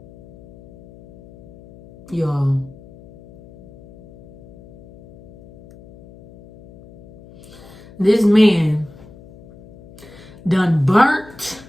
Yo. This man done burnt,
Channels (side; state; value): left; noise; hum, 22 dB below the sound